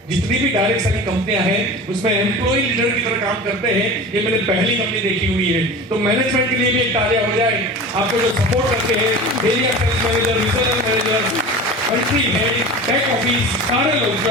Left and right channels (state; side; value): normal; both; correlation 0.34